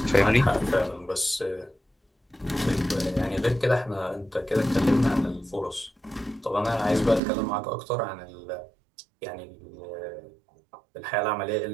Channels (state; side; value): drops out; left; at 7.2 s